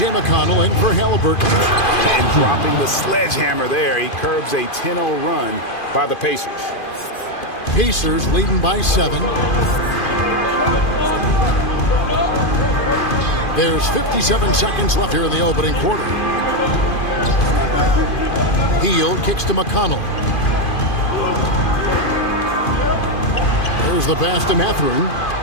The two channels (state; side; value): late; right; 2.5 ms